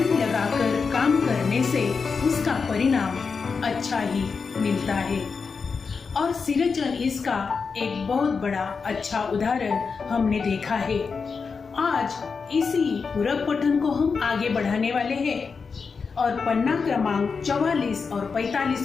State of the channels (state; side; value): quieter; right; 5.2 dB